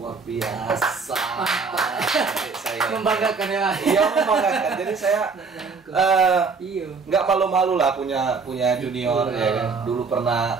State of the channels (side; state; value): left; quieter; 4.8 dB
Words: biasa. Membanggakan ya. Iya, membanggakan. Jadi saya nggak malu-malu lah punya junior ya kan. Dulu